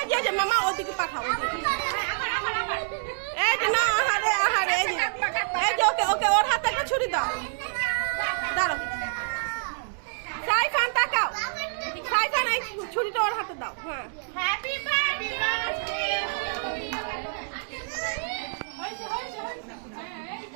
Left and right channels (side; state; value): left; silent; digital silence